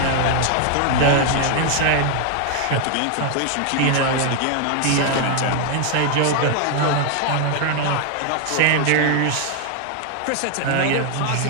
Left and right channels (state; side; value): different; both; correlation 0.00